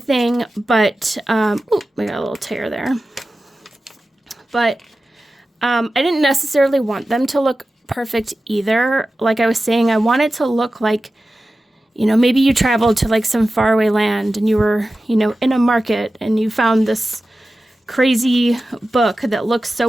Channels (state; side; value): normal; both; correlation 0.94